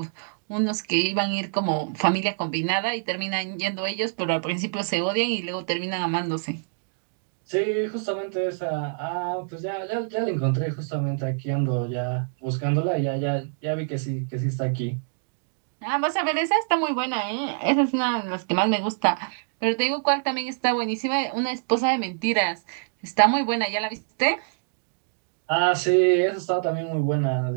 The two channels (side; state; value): left; silent; digital silence